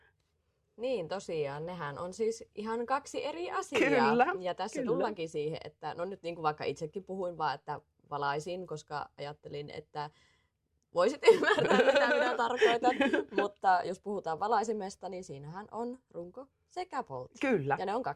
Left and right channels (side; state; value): both; identical; correlation 1.00